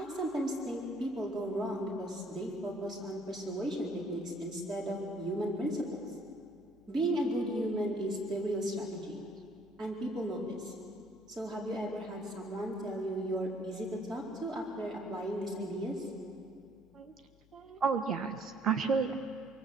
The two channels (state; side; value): noise; left; hum, 28 dB below the sound